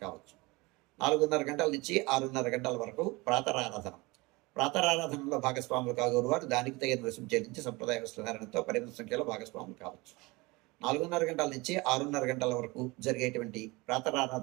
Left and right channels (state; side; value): quieter; left; 23.9 dB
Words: కావచ్చు. 4:30 గంటల నుంచి 6:30 గంటల వరకు ప్రాతరారాధన. ప్రాతరారాధనలో భాగస్వాములు కాగోరు వారు దానికి తగిన రుసుము చెల్లించి సంప్రదాయ వస్త్రధారణతో పరిమిత సంఖ్యలో భాగస్వాములు కావచ్చు. 4:30 గంటల నుంచి 6:30 గంటల వరకు జరిగేటువంటి